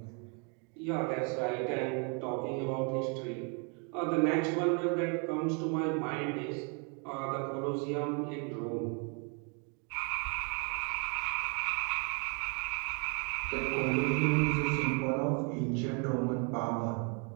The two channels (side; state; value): left; quieter; 36.6 dB